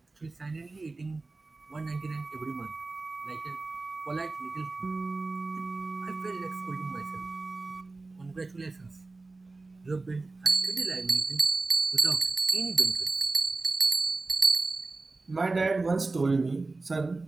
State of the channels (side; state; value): left; quieter; 3.5 dB